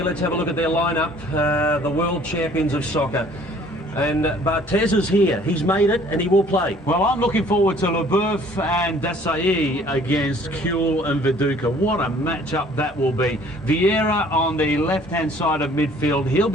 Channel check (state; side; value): normal; both; correlation 0.55